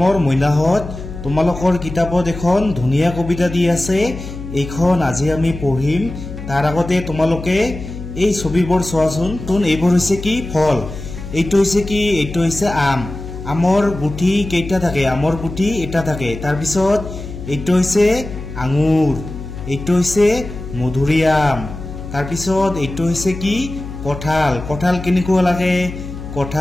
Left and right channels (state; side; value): noise; left; hum, 10 dB below the sound